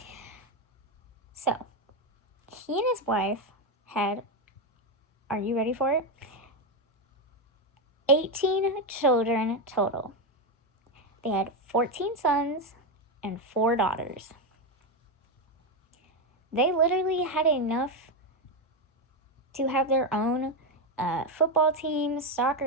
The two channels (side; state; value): both; normal; correlation 0.08